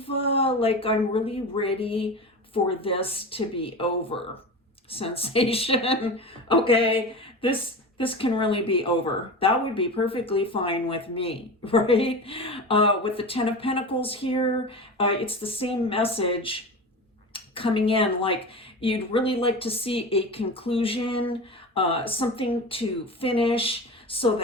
like, I'm really ready for this to be over sensation. Okay, this can really be over. That would be perfectly fine with me, right? With the 10 of Pentacles here, it's the same message coming in, like you'd really like to see a conclusion, something to finish so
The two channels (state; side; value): normal; both; correlation 0.28